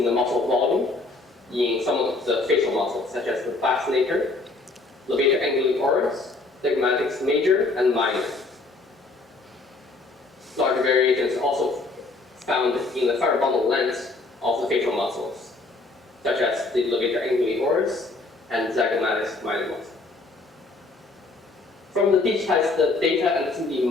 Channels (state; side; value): quieter; right; 3.4 dB